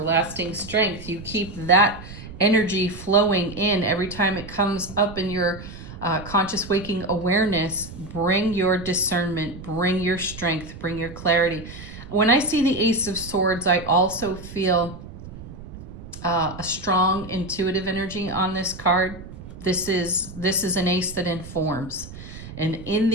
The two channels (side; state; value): right; noise; rumble, 14 dB below the sound